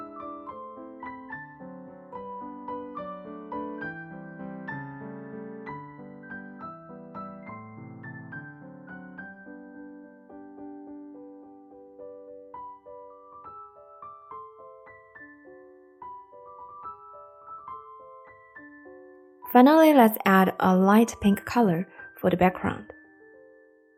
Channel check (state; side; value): identical; both; correlation 1.00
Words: Finally, let's add a light pink color for the background.